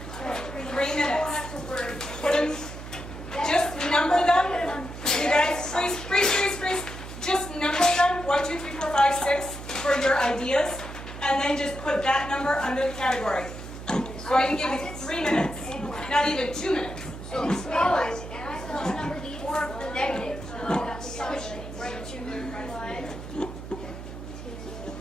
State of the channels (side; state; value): right; noise; hum, 11 dB below the sound